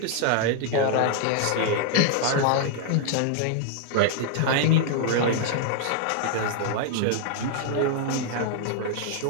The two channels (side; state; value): both; different; correlation 0.00